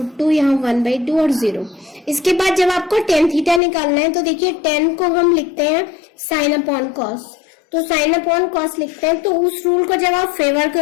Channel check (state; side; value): drops out; right; at 3.6 s